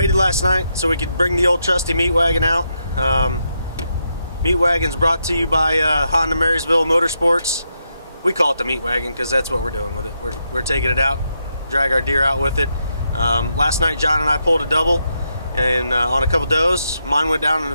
last night so we could bring the old trusty meat wagon out. Meat wagon's brought to you by Honda Marysville Motorsports. We call it the meat wagon because that's what we're doing with it. We're taking it out, drag our deer out with it. Last night John and I pulled a double and on a couple does. Mine went down in the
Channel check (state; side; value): inverted; both; correlation -0.82